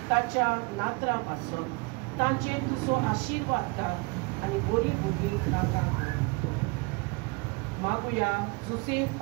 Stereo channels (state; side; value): quieter; left; 28.3 dB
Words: ताच्या नातरां पासत तांचेर तुजो आशिर्वाद घाल आनी बरीं भुरगीं तांकां मागुया जोसेफ